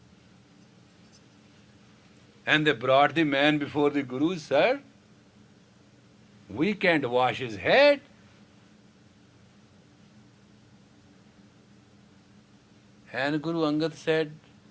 And they brought the man before the Guru, sir, we can't wash his head. And Guru Angad said,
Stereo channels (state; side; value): identical; both; correlation 1.00